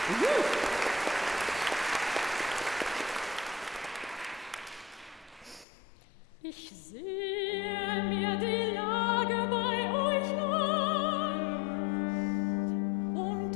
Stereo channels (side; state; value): right; drops out; at 5.7 s